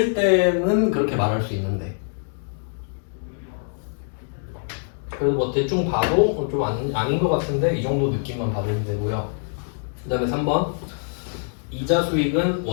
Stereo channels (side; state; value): right; silent; digital silence